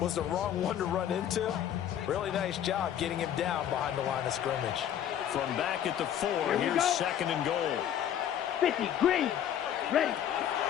the wrong one to run into. Really nice job getting him down behind the line of scrimmage. From back at the 4, here's 2nd and goal. 50, green, ready.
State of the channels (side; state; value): right; quieter; 10.2 dB